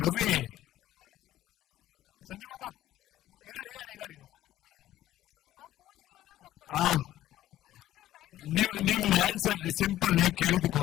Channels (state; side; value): quieter; right; 13.8 dB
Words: ರವಿ, ಸಂಜು ಬಾಬಾ ಇದರ್ ನಿಮ್ದು ಆನ್ಸರ್ ಸಿಂಪಲ್. ನೀವು ಕೇಳಿದಕ್ಕೆ